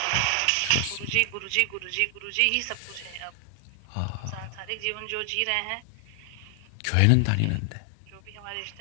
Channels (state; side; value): different; both; correlation 0.00